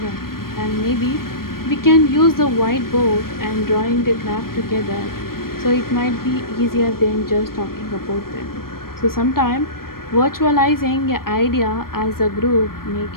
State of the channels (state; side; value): late; right; 0.93 ms